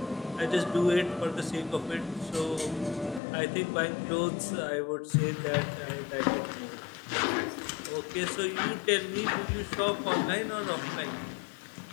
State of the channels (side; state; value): right; drops out; at 3.2 s